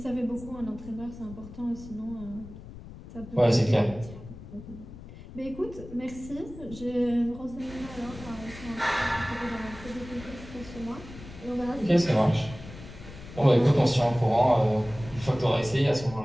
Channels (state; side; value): noise; left; rumble, 15 dB below the sound